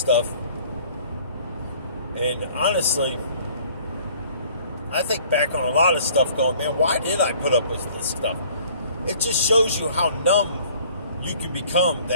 And honestly, I think back on a lot of stuff going, man, why did I put up with this stuff? It just shows you how numb you can become,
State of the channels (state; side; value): inverted; both; correlation -0.55